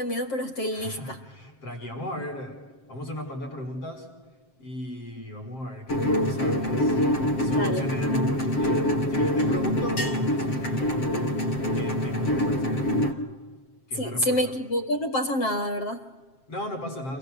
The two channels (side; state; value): right; late; 7.5 ms